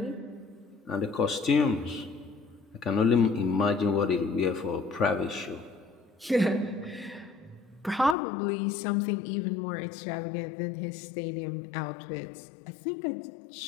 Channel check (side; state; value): right; drops out; at 8.2 s